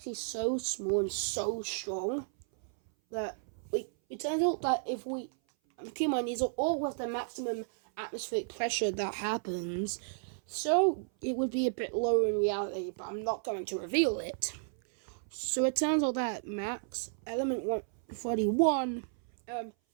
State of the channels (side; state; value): left; silent; 56 dB below the other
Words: so small and so strong that it turns out that if we keep in mind, these are all with the maximum atmospheric pressure that happens, so it would be a bit lower in reality, but I'm not going to reveal it. So it turns out that max element 141,